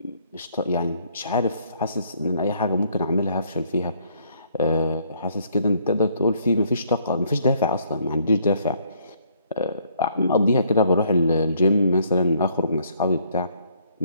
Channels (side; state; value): both; inverted; correlation -0.66